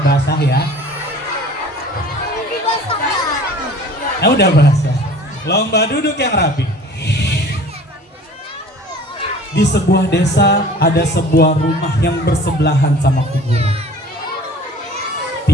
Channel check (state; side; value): normal; both; correlation 0.46